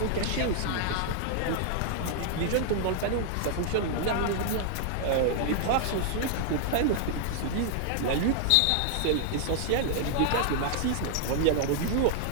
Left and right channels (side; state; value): both; different; correlation 0.00